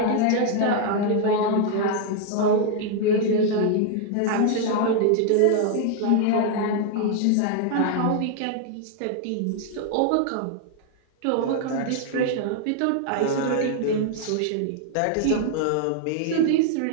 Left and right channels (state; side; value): different; both; correlation 0.00